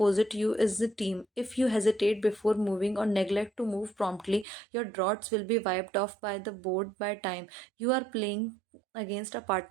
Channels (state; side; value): drops out; left; at 4.5 s